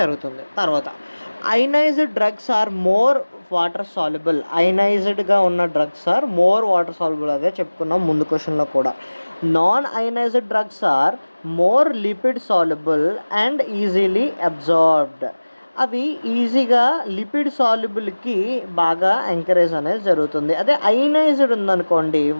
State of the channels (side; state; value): both; inverted; correlation -1.00